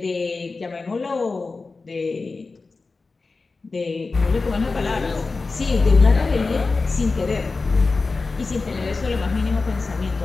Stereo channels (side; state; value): right; quieter; 3.9 dB